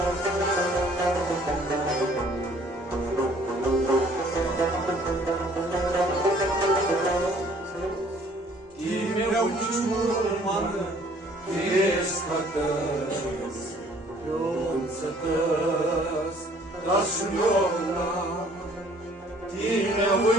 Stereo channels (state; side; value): normal; both; correlation 0.57